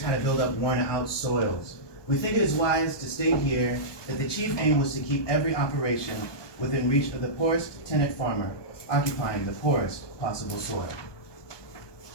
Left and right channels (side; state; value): right; late; 1.2 ms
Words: How to Build Up Worn Out Soils. We think it is wise to state here that the chief aim was to keep every operation within reach of the poorest tenant farmer, occupying the poorest possible soil.